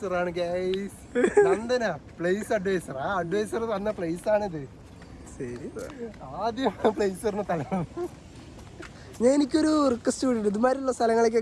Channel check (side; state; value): both; identical; correlation 1.00